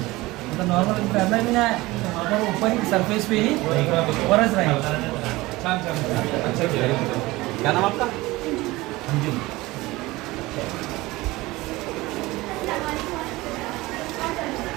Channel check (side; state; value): left; quieter; 20.1 dB